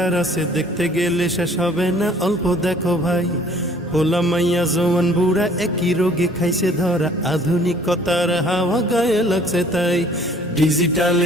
আছে, দেখতে গেলে শেষ হবে না, অল্প দেখো ভাই। পোলা মাইয়া জওয়ান বুড়া একই রোগে খাইছে ধরা, আধুনিকতার হাওয়া গায়ে লাগছে তাই।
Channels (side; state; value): both; normal; correlation 0.55